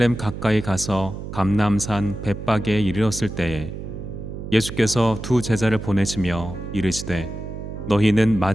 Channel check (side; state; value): right; noise; hum, 9 dB below the sound